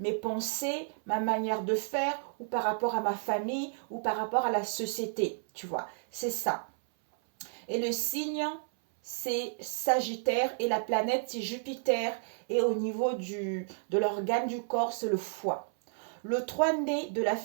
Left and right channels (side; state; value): left; silent; 57 dB below the other